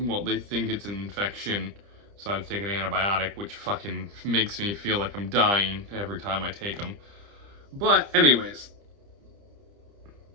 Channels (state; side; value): late; left; 30 ms